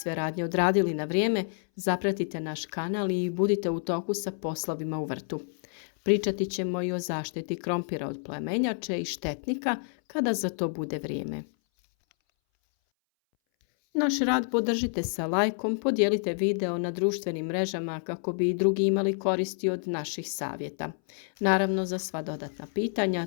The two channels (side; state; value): right; silent; 59 dB below the other